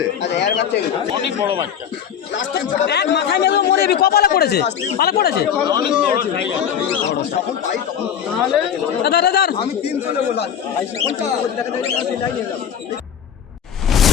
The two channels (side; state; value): right; quieter; 8.6 dB